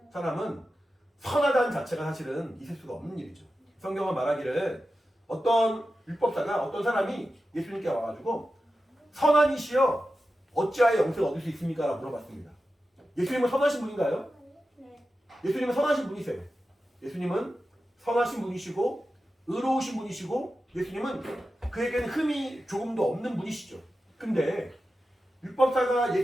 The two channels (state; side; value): normal; both; correlation 0.92